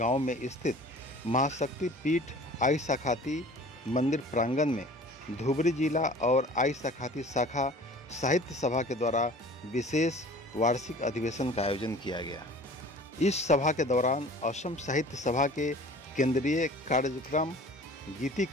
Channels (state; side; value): normal; both; correlation 0.45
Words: में स्थित महाशक्ति पीठ आई साखाती मंदिर प्रांगण में धुबरी जिला और आई साखाती शाखा साहित्य सभा के द्वारा विशेष वार्षिक अधिवेशन का आयोजन किया गया। इस सभा के दौरान असम साहित्य सभा के केंद्रीय कार्यक्रम गीति